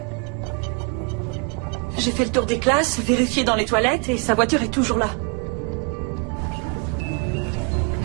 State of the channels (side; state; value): left; quieter; 32.8 dB